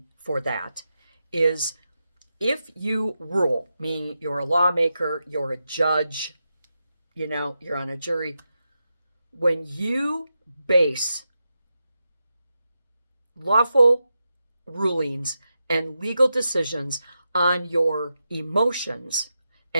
for that is if you rule, meaning you're a lawmaker, you're a judge, you're on a jury, when you base lawful rulings and legal decisions on your emotions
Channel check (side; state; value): both; inverted; correlation -0.88